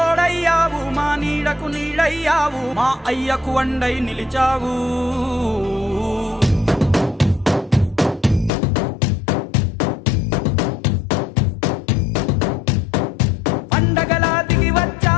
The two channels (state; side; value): drops out; right; at 8.5 s